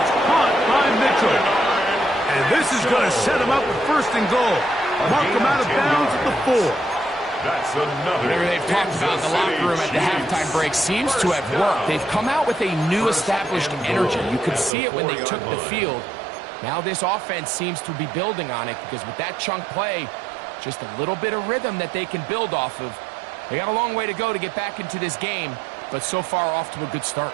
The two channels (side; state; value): left; drops out; at 14.7 s